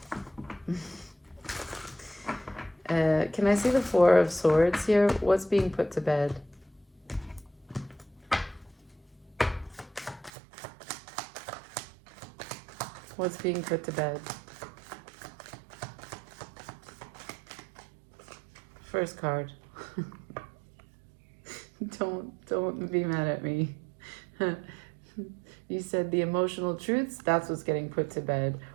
Can I see the 4 of Swords here? What's being put to bed? What's being put to bed? First card. Don't be mad at me. You said the emotional truths, that's what's getting put to bed.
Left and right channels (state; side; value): drops out; left; at 10.3 s